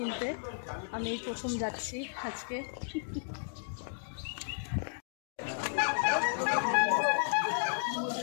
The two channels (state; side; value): silent; right; digital silence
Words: আমি এই প্রথম যাচ্ছি আজকে।